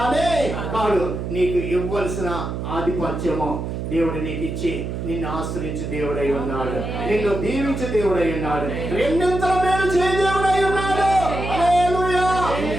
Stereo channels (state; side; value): noise; right; hum, 5 dB below the sound